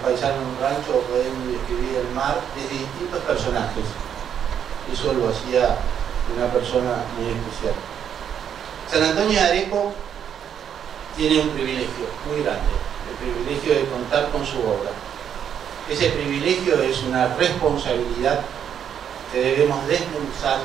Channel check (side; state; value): left; quieter; 8.7 dB